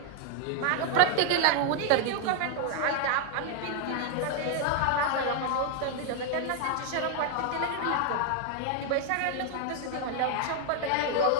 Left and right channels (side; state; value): both; different; correlation 0.00